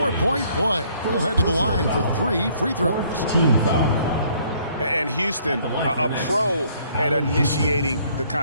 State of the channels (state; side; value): inverted; both; correlation -0.63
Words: play. He'll head to the line for 3 free throws. Team foul. And Houston, a pro at initiating the